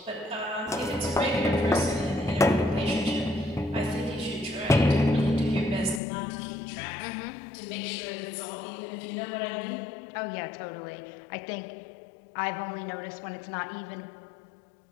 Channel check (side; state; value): right; drops out; at 6.0 s